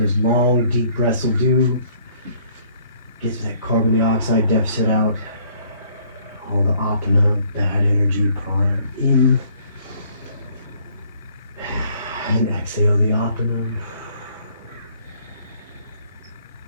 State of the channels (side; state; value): both; inverted; correlation -0.61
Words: those long, deep breaths will do. Gets that carbon dioxide deficit out. All the apana, bad energy, prana in. And exhale the apana.